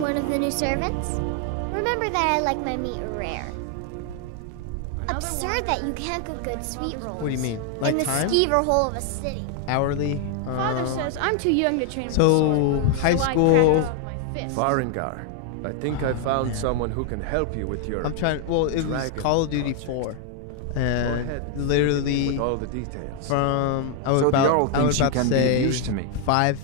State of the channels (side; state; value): both; different; correlation 0.00